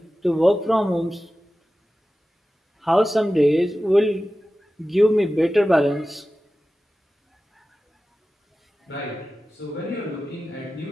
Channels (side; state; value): both; normal; correlation 0.95